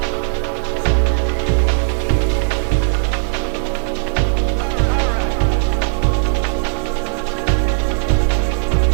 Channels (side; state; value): left; silent; digital silence